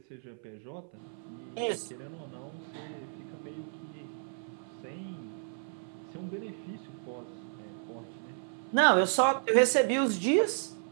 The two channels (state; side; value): silent; left; 56 dB below the other